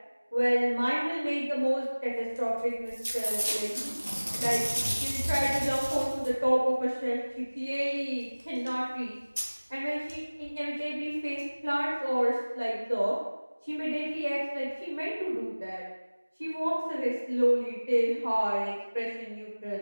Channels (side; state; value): both; inverted; correlation -1.00